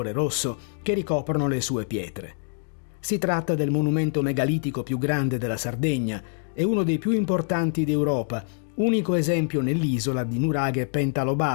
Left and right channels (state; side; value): silent; right; digital silence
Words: rosso che ricoprono le sue pietre. Si tratta del monumento megalitico più grande della Sardegna e uno dei più importanti d'Europa, unico esempio nell'isola di nuraghe